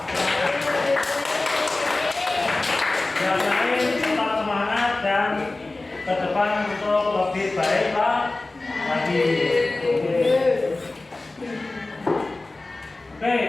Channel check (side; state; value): right; quieter; 3.1 dB